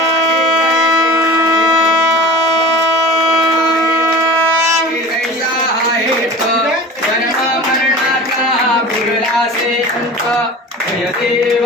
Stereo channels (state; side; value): normal; both; correlation 0.36